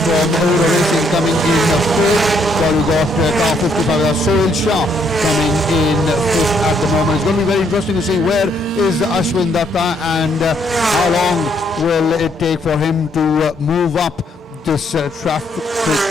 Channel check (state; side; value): normal; both; correlation 0.71